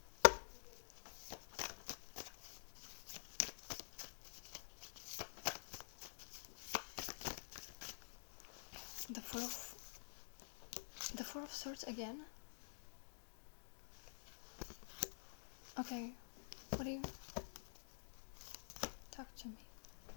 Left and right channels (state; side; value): silent; right; digital silence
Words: Four of Swords again. Okay, what do you... Talk to me.